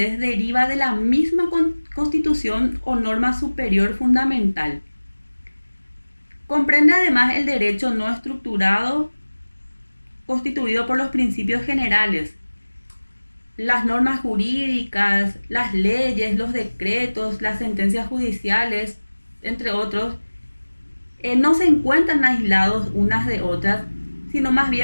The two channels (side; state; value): both; inverted; correlation -1.00